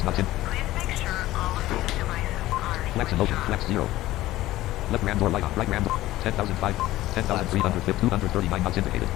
knots in. Flex and motion. Flex 0. Left ram door light on. Right ram door. 10,005. 10,350. 239 knots indicated.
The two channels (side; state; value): right; quieter; 16.1 dB